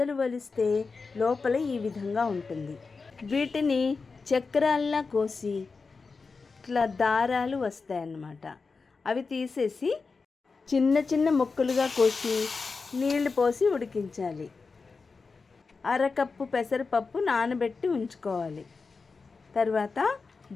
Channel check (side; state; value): right; quieter; 4.5 dB